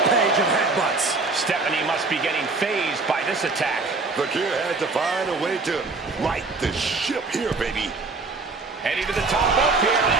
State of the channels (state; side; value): quieter; left; 3.8 dB